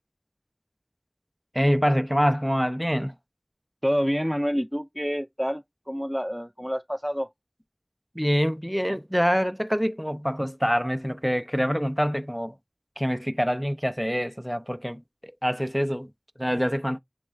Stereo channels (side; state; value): both; identical; correlation 1.00